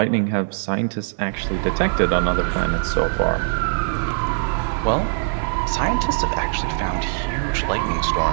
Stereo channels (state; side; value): silent; left; digital silence